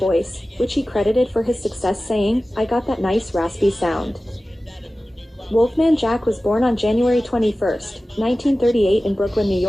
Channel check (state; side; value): normal; both; correlation 0.96